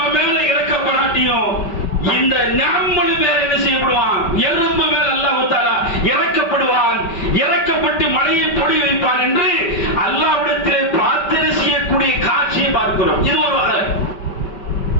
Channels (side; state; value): right; late; 5.2 ms